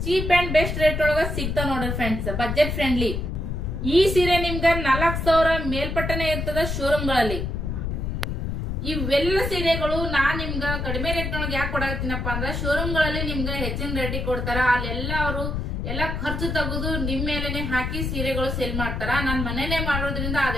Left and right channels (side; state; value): left; noise; rumble, 2 dB below the sound